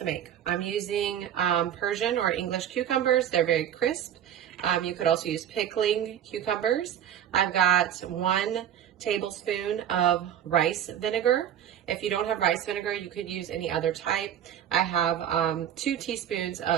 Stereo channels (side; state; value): left; quieter; 10.1 dB